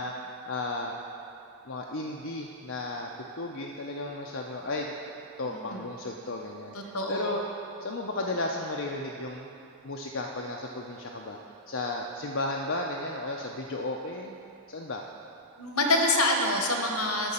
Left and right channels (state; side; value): normal; both; correlation -0.15